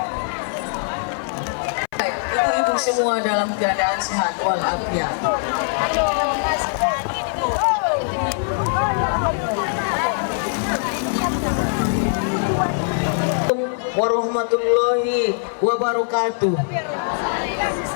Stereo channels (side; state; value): right; silent; 64 dB below the other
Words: Ibu-ibu semua dalam keadaan sehat walafiat. Warahmatullahi wabarakatuh.